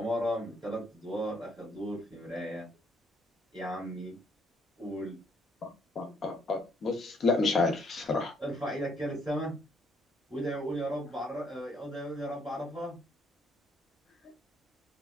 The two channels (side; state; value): both; normal; correlation 0.69